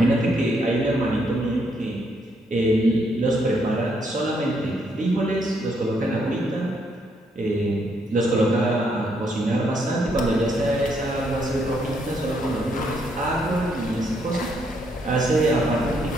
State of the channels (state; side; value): normal; both; correlation 0.74